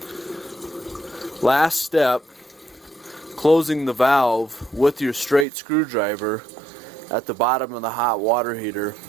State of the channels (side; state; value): left; drops out; at 5.5 s